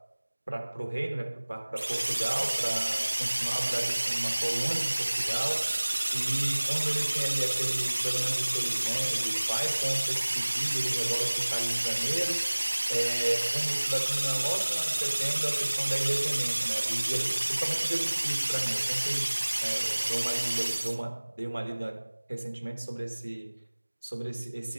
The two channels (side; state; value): both; inverted; correlation -1.00